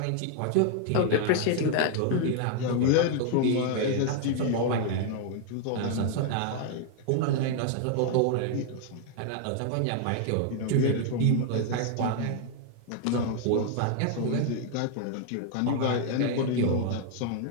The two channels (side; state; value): both; different; correlation 0.00